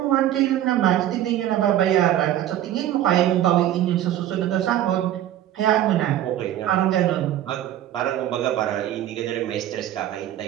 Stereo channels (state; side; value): quieter; left; 12.2 dB